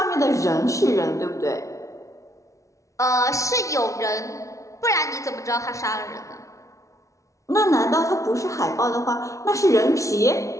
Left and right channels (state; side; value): late; right; 0.15 ms